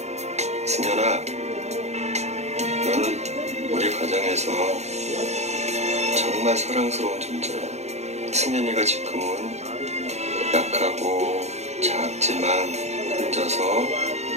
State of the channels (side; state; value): left; late; 0.32 ms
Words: 승현아, 너는 우리 가정에서 정말 사랑스러운 존재야. 승현이가 지금은 약하고 작지만 혼자서